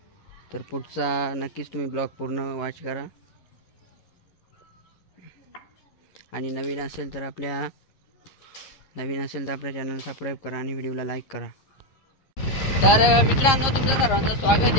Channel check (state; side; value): late; right; 11 ms